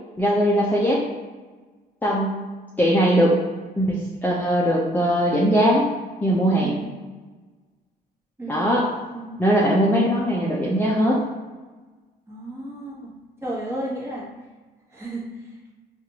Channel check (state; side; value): normal; both; correlation 0.64